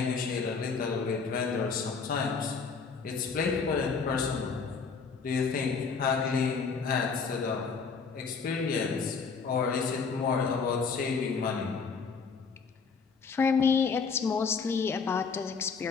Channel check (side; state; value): right; quieter; 5.3 dB